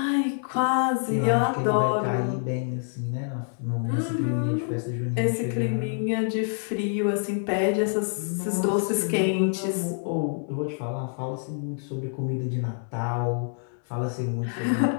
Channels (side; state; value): right; silent; digital silence